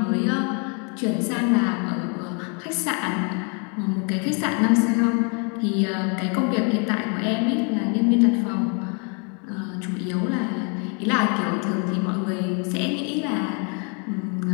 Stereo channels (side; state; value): right; quieter; 36.9 dB